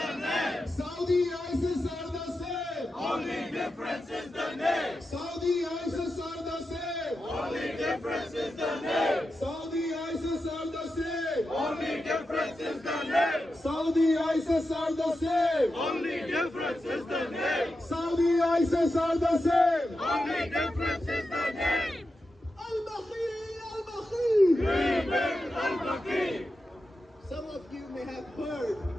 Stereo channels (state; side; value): normal; both; correlation 0.90